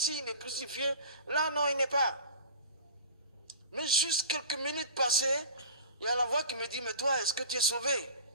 est crucifié. Là, non, il n'est pas. Mais juste quelques minutes passées, il y a la voix qui me dit, mais toi, est-ce que tu es sauvé?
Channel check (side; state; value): both; inverted; correlation -0.38